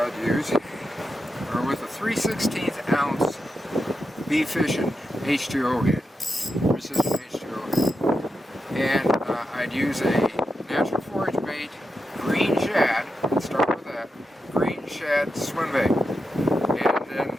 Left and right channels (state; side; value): normal; both; correlation 0.87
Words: use are with a 3/16 ounce Be Fishing H2O head, precision H2O head, and I'd use a natural forage bait green shad. Let's start with that green shad swim bait, and then